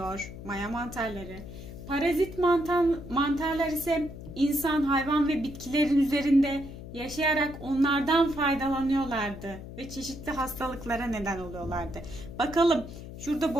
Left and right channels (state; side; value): noise; left; hum, 12 dB below the sound